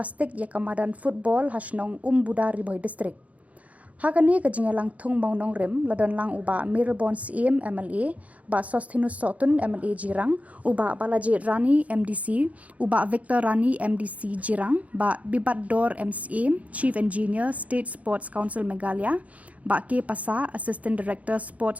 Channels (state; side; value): late; left; 0.068 ms